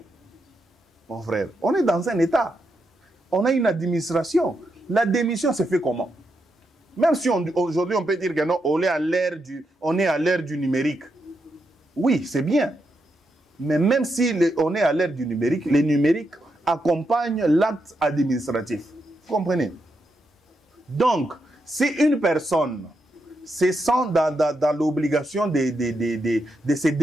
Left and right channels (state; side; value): normal; both; correlation 0.83